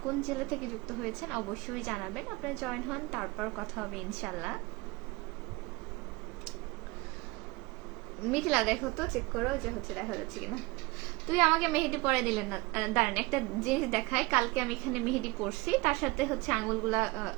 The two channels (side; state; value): left; quieter; 23.5 dB